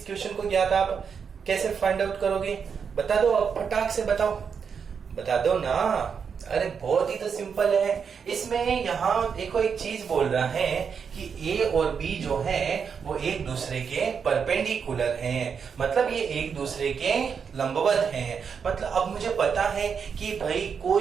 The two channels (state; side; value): quieter; left; 6.5 dB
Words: क्वेश्चन को ज्ञात, आप कैसे फाइंड आउट करोगे? बता दो, अब फटाक से बताओ, बता दो ना। अरे बहुत ही तो सिंपल है। इसमें यहाँ देखो एक चीज बोल रहा है कि ए और बी जो है वो एक दूसरे के परपेंडिकुलर हैं, मतलब ये एक दूसरे के लंबवत हैं। मतलब अब मुझे पता है कि भाई